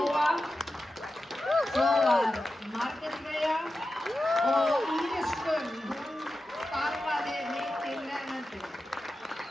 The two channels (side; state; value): both; normal; correlation 0.92